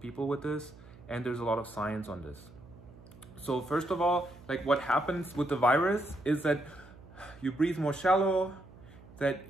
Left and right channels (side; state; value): right; noise; hum, 21 dB below the sound